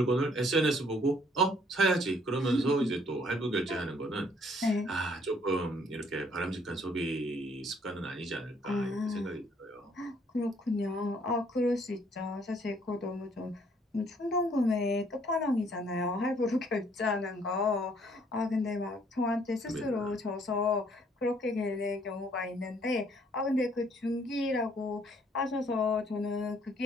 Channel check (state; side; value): normal; both; correlation 0.63